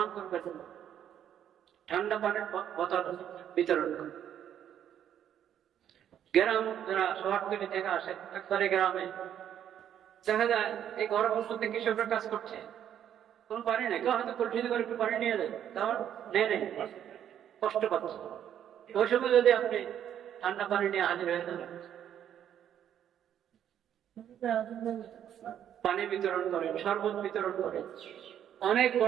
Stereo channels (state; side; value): quieter; left; 9.9 dB